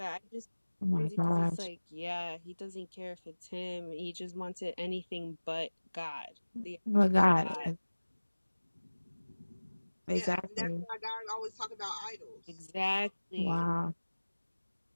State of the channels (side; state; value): both; inverted; correlation -1.00